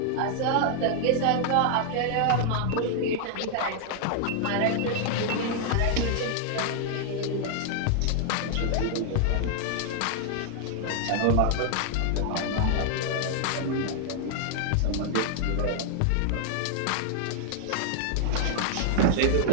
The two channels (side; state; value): both; different; correlation 0.00